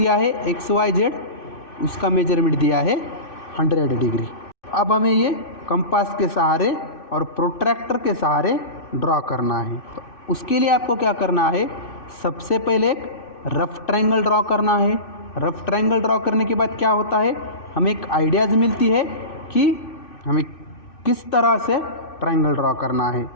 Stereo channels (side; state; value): right; late; 2.6 ms